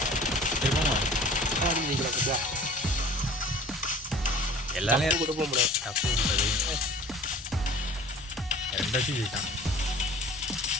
எல்லாமே கூட போக முடியாது. தப்பு ரெண்டாச்சும் ஜெயிட்டான்.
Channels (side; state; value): both; normal; correlation 0.46